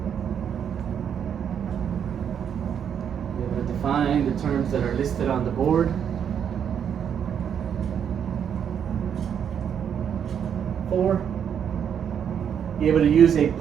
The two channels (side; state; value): left; quieter; 8.3 dB